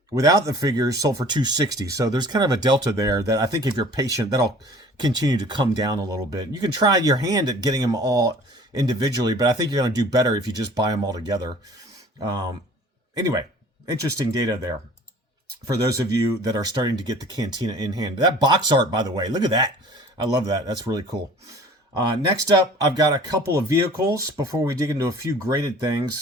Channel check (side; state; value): both; normal; correlation 0.48